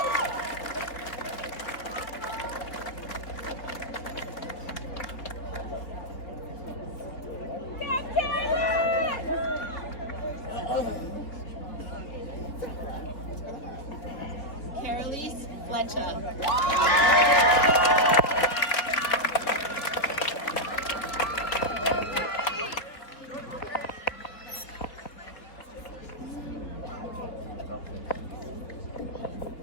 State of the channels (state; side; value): late; right; 4.1 ms